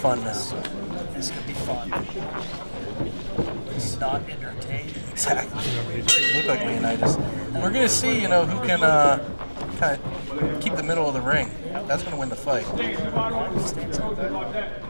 this. This could be fun. It's not entertaining. Exactly. Look like Leonidas. We're going to see, you know, who can kind of keep the middle of the ring. That's going to win the fight. It's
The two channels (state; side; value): inverted; both; correlation -1.00